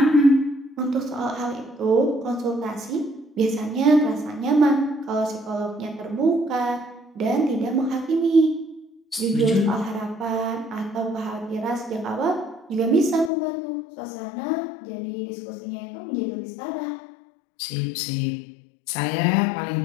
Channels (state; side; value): drops out; right; at 13.3 s